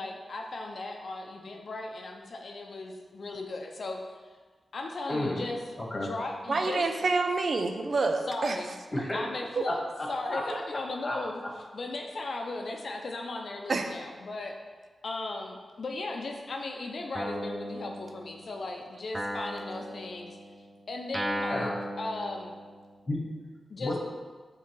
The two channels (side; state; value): both; normal; correlation 0.89